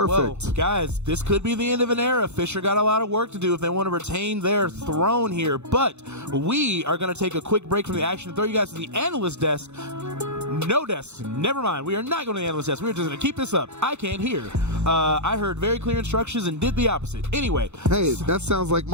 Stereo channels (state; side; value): late; left; 0.82 ms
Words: Well, guys, this could be the end of an era. Fisher got a lot of work to do if they want to retain their throne here. But we are going to take a quick break from the action and throw you guys to the analyst desk. No desk. Never mind. We are not going to the analyst desk. We're just going to keep this up. I can't hear. I heard very clear instructions and did the opposite. Anyway. Hey, that sounds like